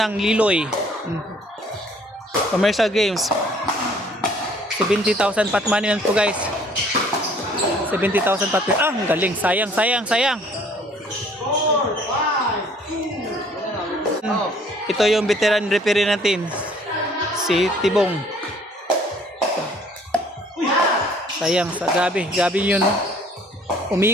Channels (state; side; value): normal; both; correlation 0.57